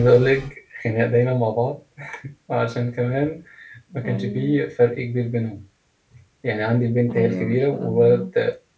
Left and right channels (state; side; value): identical; both; correlation 1.00